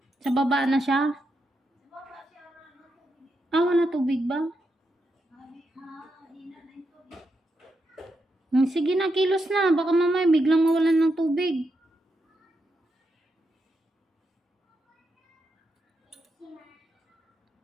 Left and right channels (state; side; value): normal; both; correlation 0.84